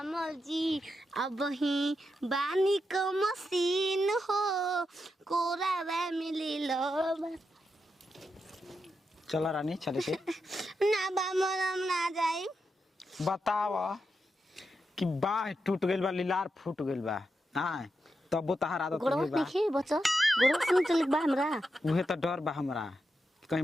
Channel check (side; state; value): both; normal; correlation 0.86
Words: जी अब ही बानी क मशीन हो कोरावा मिलेला चला रानी चले के ना बामल हम ना जाई। बताव कि बाह टूट गइल बा लीलार फूट गइल बा हां तब तहार आदत गोड़वा बा देखी बच्चा गोड़वा सुन चल बा हमरा उहे त डर बा हमरा कहीं